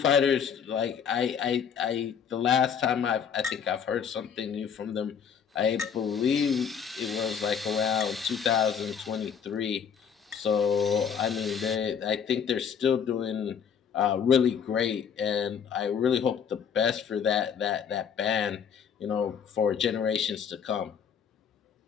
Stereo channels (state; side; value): quieter; right; 7.4 dB